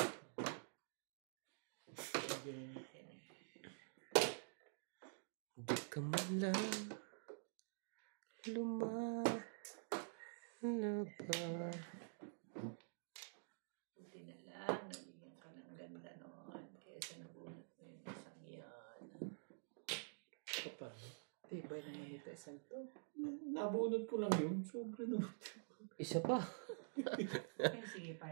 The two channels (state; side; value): silent; left; digital silence